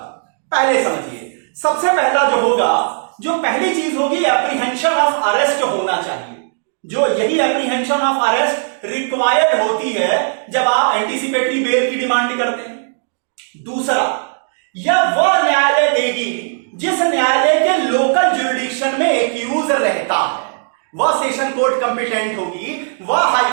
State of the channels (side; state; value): left; silent; digital silence